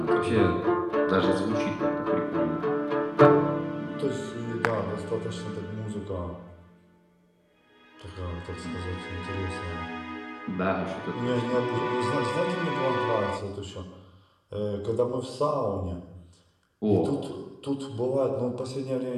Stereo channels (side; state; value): both; identical; correlation 1.00